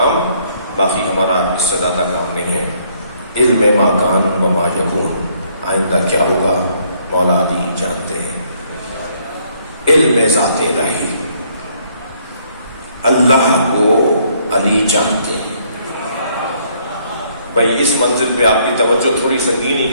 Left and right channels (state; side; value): inverted; both; correlation -0.67